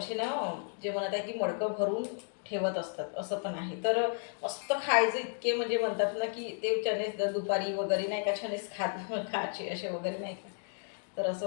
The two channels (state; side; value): silent; right; 56 dB below the other